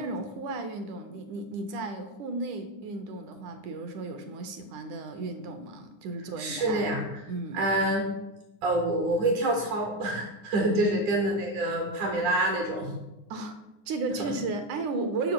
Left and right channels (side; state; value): left; late; 10 ms